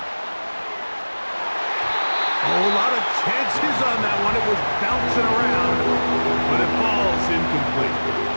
A whole lot of chances on that one. It was bouncing around, but it falls incomplete.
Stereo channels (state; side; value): inverted; both; correlation -1.00